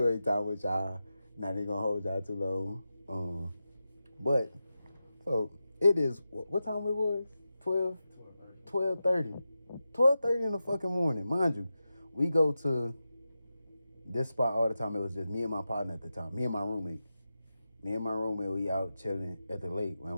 time with y'all. Not even gonna hold y'all too long. But so it is. What time it was? 12:30. 12:30 in the fucking morning, mind you. We go to this spot all the time. It was just me and my partner at the time. Me and my roommate. We out chilling at the lake.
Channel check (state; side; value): inverted; both; correlation -0.91